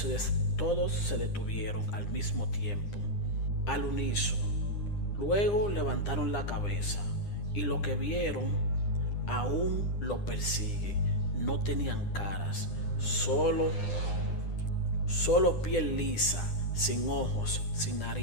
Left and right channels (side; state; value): right; late; 9.9 ms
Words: detuvieron al mismo tiempo, al unísono. Luego levantaron la cabeza y lo que vieron aún lo persigue. No tenían caras, solo piel lisa, sin ojos, sin